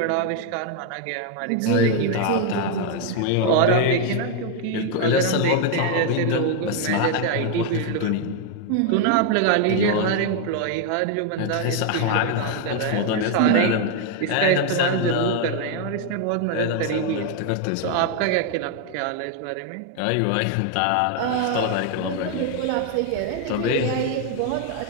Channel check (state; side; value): different; both; correlation 0.00